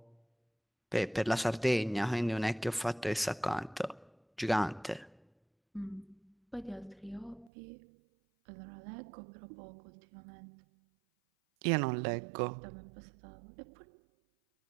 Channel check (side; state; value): left; drops out; at 7.5 s